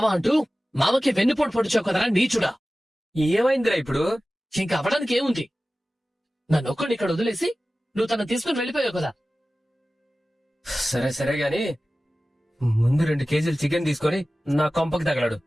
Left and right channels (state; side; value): normal; both; correlation 0.96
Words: అంటూ మామకి వెన్నుపోటు పొడిచావు కదరా నీచుడా. ఏమైందిరా ఇప్పుడు? ఇంకా అవ్వడానికి ఏముంది? నన్ను ఒక్కడిని ఇక్కడ వదిలేసి నువ్వు తను తీసుకుని వెళ్ళిపోయావు కదా. సరే సరే గాని ముందు 2 కేజీలు చికెన్ తీసుకొని నా కొంపకి తగలడు.